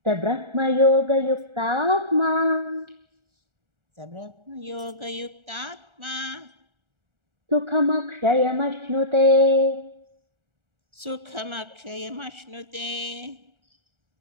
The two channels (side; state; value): left; late; 1.4 ms